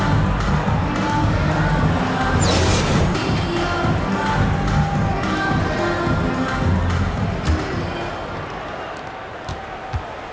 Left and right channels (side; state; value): both; identical; correlation 1.00